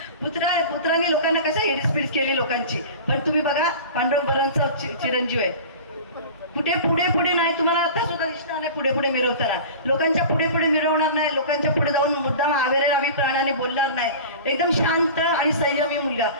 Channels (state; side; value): inverted; both; correlation -0.36